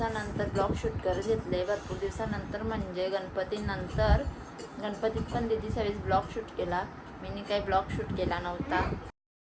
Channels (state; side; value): identical; both; correlation 1.00